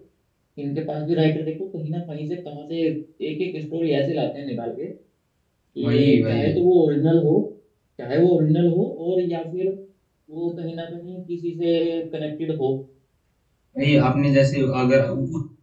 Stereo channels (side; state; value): both; identical; correlation 1.00